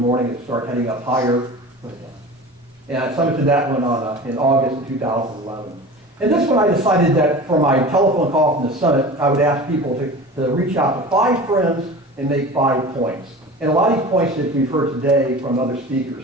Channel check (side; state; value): both; normal; correlation 0.36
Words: It started heading up higher. And I summited that one in August of 2011. And this one I decided that for my telephone call from the summit, I would ask people to reach out to 5 friends and make 5 points. And a lot of these points that we've heard today from other speakers,